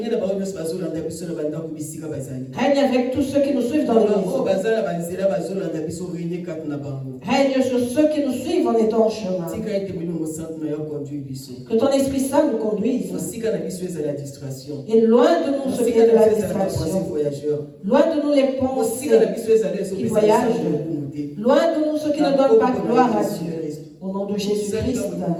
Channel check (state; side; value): identical; both; correlation 1.00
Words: Règne avec tous ceux qui nous suivent dans l'église. Règne sur ceux qui nous suivent en étant en chemin. Que ton Esprit Saint nous conduise. Et loin de nous ce qui est de la distraction. Loin de nous les pensées qui voyagent. Loin de nous ceux qui ne donnent pas gloire à Dieu. Au nom de Jésus-Christ.